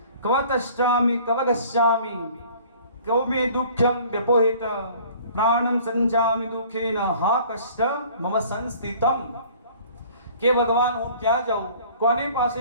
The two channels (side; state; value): both; inverted; correlation -0.51